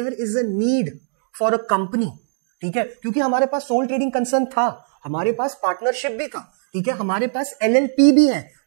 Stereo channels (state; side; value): silent; left; digital silence